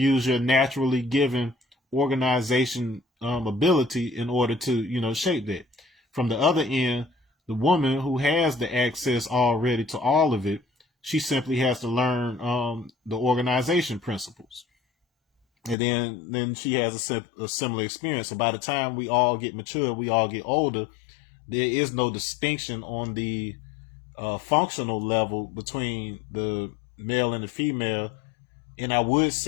your naturally given organization ability in order to, shape that. From the other end, the woman who has the access already to all of it, she simply has to learn the organization principles. And then she has a similar experience. So by the time we all get mature, we all get older, there is no distinction on the functional level between the male and the female. And I would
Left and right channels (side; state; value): right; drops out; at 15.8 s